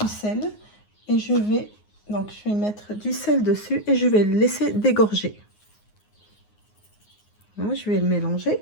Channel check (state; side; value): late; right; 9.6 ms